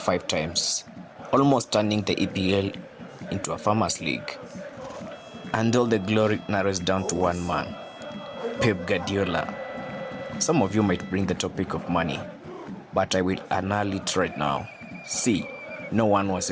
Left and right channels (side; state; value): both; identical; correlation 1.00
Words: times, almost turning the EPL into a farmers' league. And all the glory narrows down to one man, Pep Guardiola. Some of you might bring the topic of money, but I will annul it right now. See, no one was